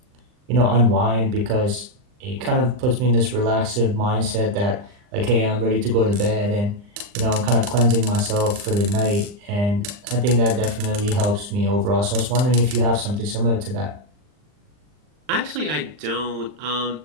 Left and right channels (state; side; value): late; left; 39 ms